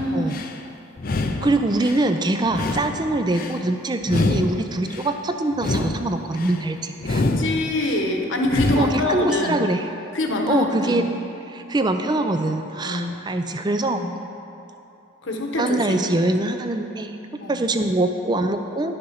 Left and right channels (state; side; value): normal; both; correlation 0.61